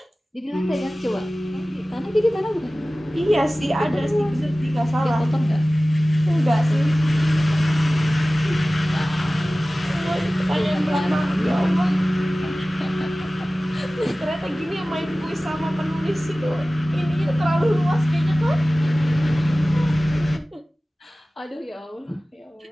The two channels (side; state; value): both; normal; correlation 0.97